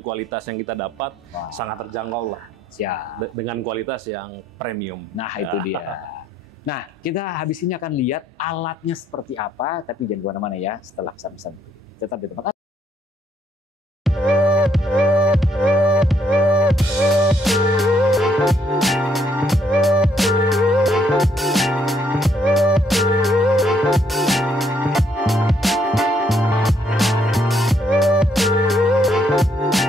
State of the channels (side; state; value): both; normal; correlation 0.70